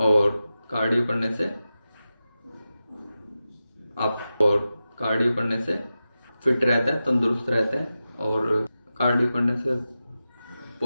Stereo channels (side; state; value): both; inverted; correlation -0.93